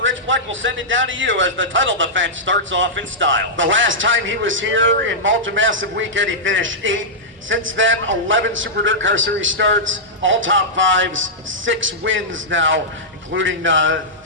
Bleck will send it down to you as the title defense starts off in style. The last time he was here in Malta Massive Weekend, he finished 8th. Since then, 11 Super DIRTcar Series starts, all top fives, 6 wins now, including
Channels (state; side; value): normal; both; correlation -0.11